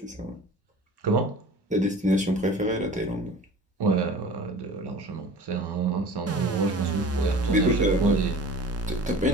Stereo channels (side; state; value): both; normal; correlation 0.41